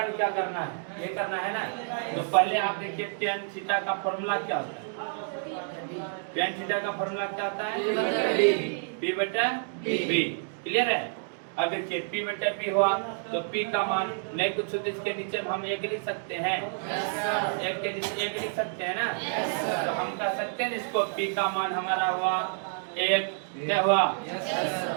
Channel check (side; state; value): left; silent; digital silence